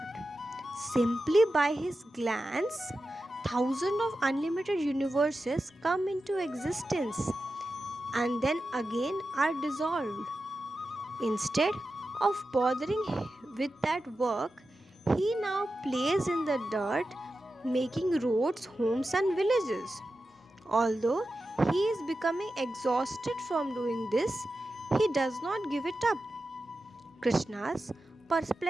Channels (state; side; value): normal; both; correlation 0.92